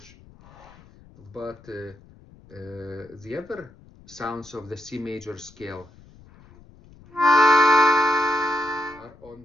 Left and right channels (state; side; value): noise; left; rumble, 25 dB below the sound